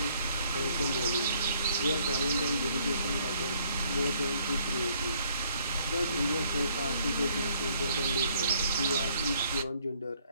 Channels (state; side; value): inverted; both; correlation -0.64